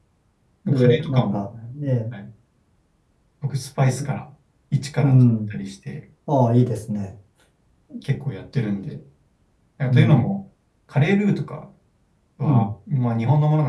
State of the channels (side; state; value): both; identical; correlation 1.00